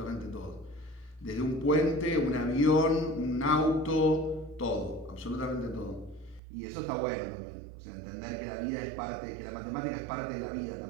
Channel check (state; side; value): drops out; left; at 6.4 s